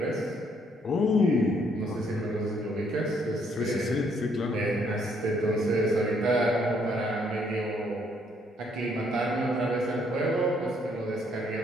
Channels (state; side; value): normal; both; correlation 0.69